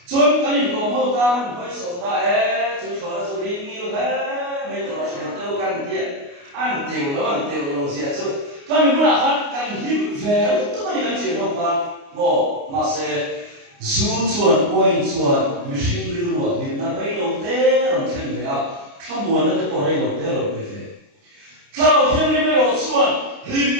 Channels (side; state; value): left; late; 29 ms